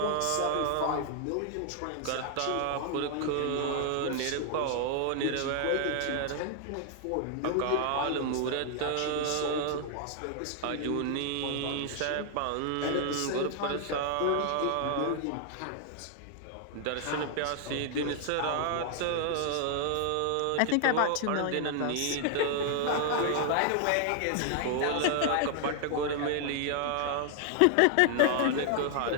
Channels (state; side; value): different; both; correlation 0.00